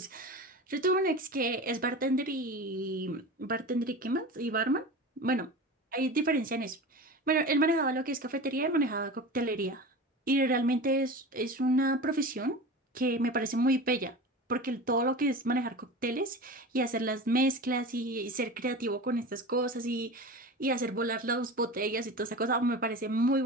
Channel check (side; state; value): both; normal; correlation 0.31